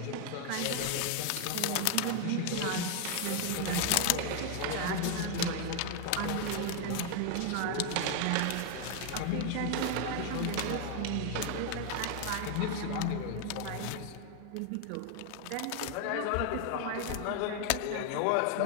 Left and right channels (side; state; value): both; different; correlation 0.01